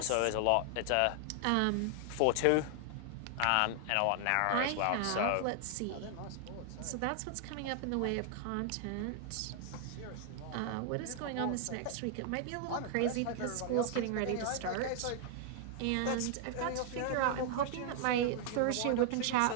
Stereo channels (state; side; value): different; both; correlation 0.00